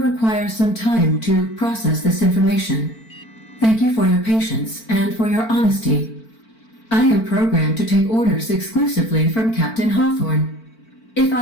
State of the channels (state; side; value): late; right; 4.5 ms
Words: some time to process this information. Thank you for your patience and for your honesty. I am programmed to take orders exclusively from Captain Hawthorne. If